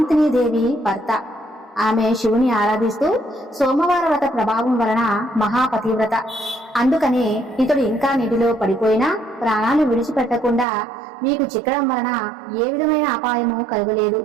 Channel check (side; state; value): left; drops out; at 10.7 s